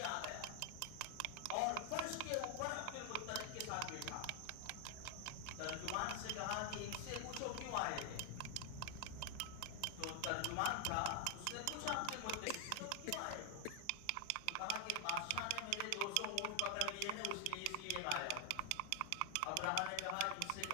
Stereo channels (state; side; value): different; both; correlation 0.00